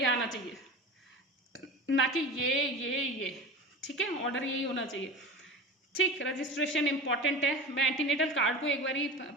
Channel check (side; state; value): both; normal; correlation 0.31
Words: आना चाहिए, ना कि ये, ठीक है, ऑर्डर यही होना चाहिए, ठीक। रजिस्ट्रेशन इंपॉर्टेंट है, मैं एंटीनेटल कार्ड को एक बारी